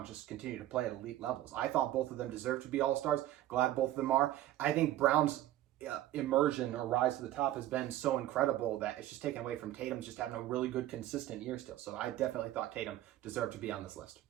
just continue to play at elite levels. I thought both of them deserved to be All-Stars. Glad both of them are. I think Brown's immersion or rise to the top has been so incredible that it's just taken away from Tatum's just having a really good, consistent year still. So I definitely thought Tatum deserved to be on this list.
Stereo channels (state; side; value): quieter; left; 14.0 dB